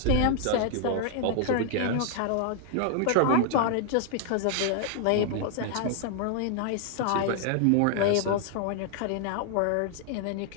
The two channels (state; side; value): different; both; correlation -0.01